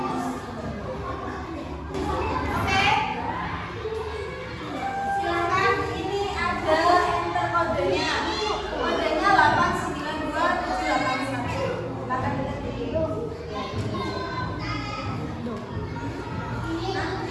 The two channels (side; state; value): both; identical; correlation 1.00